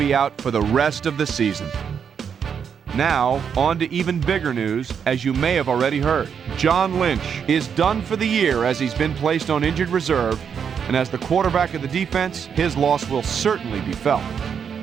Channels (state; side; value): quieter; left; 7.3 dB